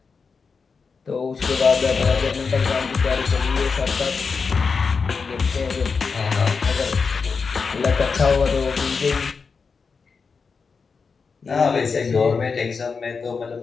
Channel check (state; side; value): quieter; right; 5.1 dB